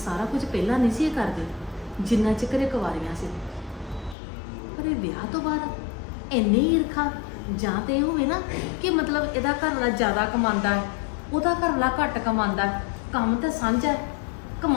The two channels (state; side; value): drops out; right; at 4.2 s